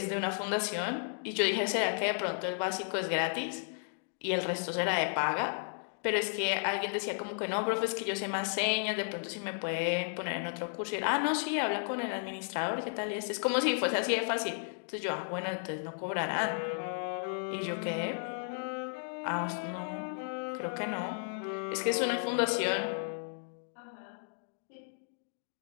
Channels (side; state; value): right; silent; digital silence